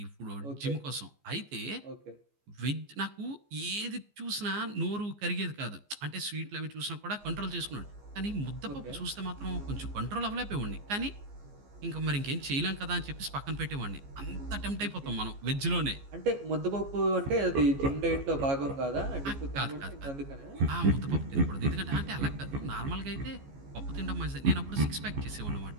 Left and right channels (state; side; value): late; left; 14 ms